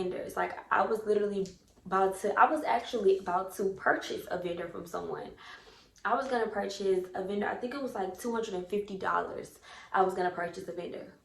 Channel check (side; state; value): both; identical; correlation 1.00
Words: Like I was actually about to purchase a vendor from someone. I was gonna purchase a vendor. I think it was like $250. I was gonna purchase a vendor.